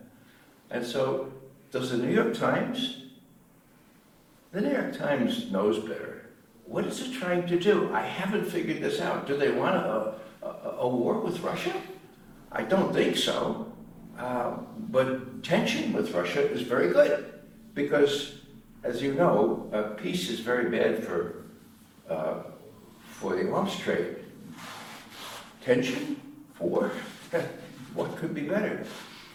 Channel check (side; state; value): both; identical; correlation 1.00